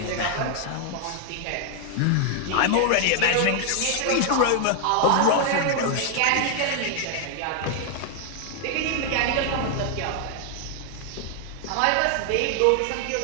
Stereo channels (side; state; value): both; different; correlation 0.00